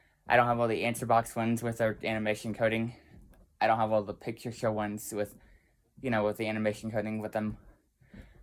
don't have all the answer box ones with their animation coding. I don't have all the picture show ones with the animation coding with them.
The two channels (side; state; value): both; identical; correlation 1.00